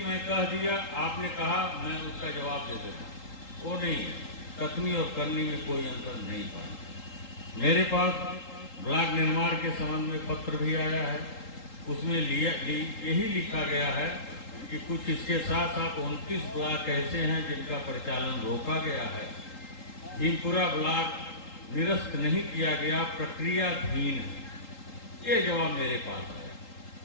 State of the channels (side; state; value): right; late; 3.8 ms